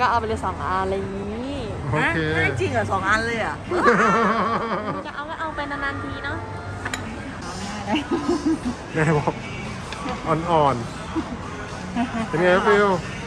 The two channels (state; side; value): identical; both; correlation 1.00